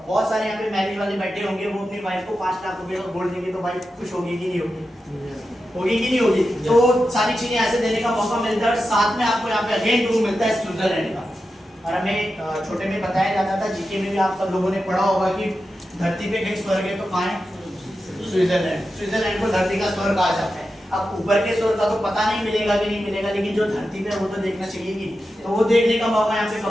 बहुत सारे यहाँ पे मैरिज वाले बैठे होंगे, वो अपनी वाइफ को 5 लाख रुपए का गोल्ड देंगे, तो वाइफ खुश होगी कि नहीं होगी? होगी कि नहीं होगी? तो सारी चीजें ऐसे देने का मौका मिलता है। और साथ में आपको यहाँ पे अगेन टूर मिलता है स्विट्जरलैंड का। और हमें छोटे में बताया जाता था, जीके में भी आप सब लोगों ने पढ़ा होगा कि धरती पे कहीं स्वर्ग है तो कहाँ है? स्विट्जरलैंड। स्विट्जरलैंड को धरती का स्वर्ग कहा जाता है। अब ऊपर के स्वर्ग का तो पता नहीं मिलेगा कि नहीं मिलेगा, लेकिन जो धरती पे वो तो देखना चाहिए कि, तो वो देखने का मौका यहाँ पे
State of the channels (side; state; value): both; normal; correlation 0.90